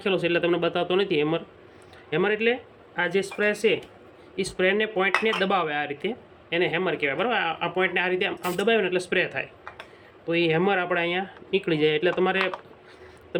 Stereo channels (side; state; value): both; identical; correlation 1.00